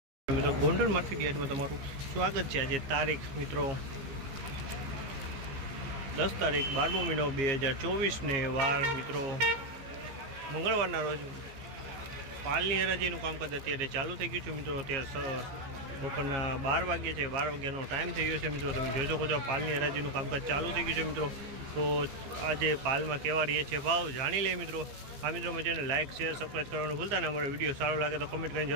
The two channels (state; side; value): late; left; 15 ms